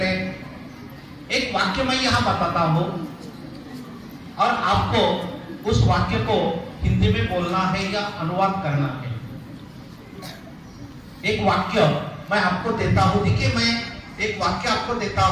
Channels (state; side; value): identical; both; correlation 1.00